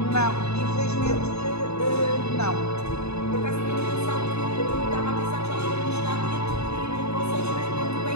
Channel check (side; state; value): right; late; 0.80 ms